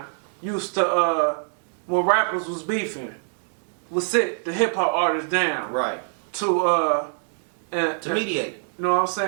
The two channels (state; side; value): silent; left; digital silence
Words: used to, when rappers was beefing, would sit the hip hop artists down. Right. To mediate. You know what I'm